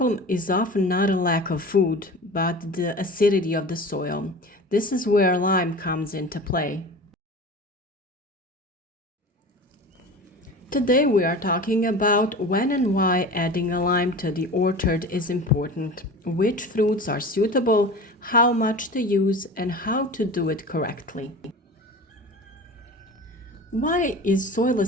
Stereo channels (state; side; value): normal; both; correlation 0.35